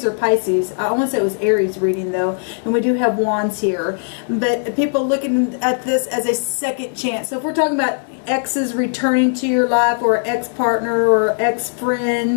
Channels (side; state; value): right; silent; digital silence